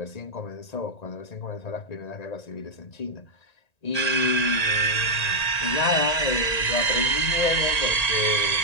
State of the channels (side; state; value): right; late; 1.9 ms